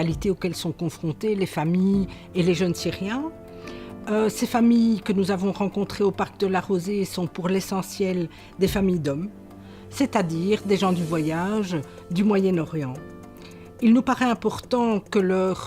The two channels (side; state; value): both; identical; correlation 1.00